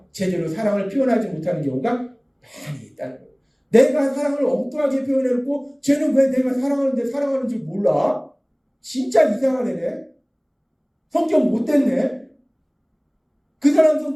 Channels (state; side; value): identical; both; correlation 1.00